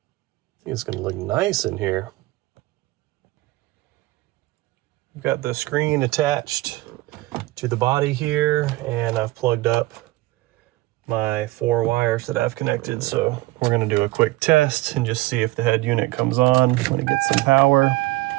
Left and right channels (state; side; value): quieter; left; 19.4 dB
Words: think it's gonna look nice in here. We've got the screen attached to the body here, and I've plugged up my 4 wires that I've connected. So we're gonna do a quick test and just see if the head unit comes on when it gets some power.